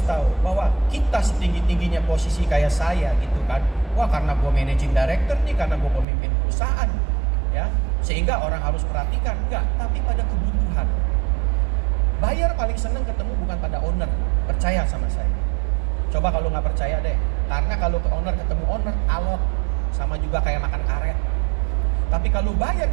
tahu bahwa kita setinggi-tingginya posisi kayak saya gitu kan. Wah karena gue managing director nih, karena gue pemimpin perusahaan. Ya, sehingga orang harus perhatikan, enggak, tapi pada kebutuhan. Buyer paling senang ketemu bukan pada owner, percaya sama saya. Coba kalau nggak percaya deh, karena kalau ke owner ketemu owner, alot, sama juga kayak makan karet. Tapi kalau buyer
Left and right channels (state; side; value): drops out; left; at 6.1 s